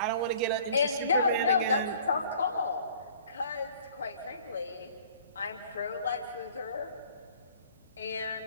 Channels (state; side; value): inverted; both; correlation -0.52